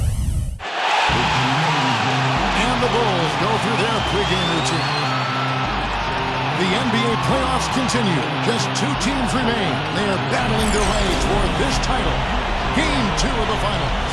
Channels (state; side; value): identical; both; correlation 1.00